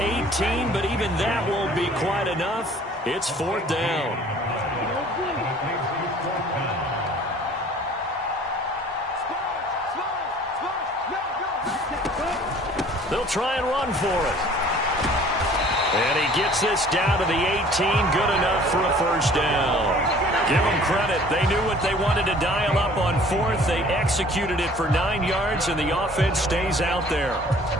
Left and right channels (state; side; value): normal; both; correlation 0.51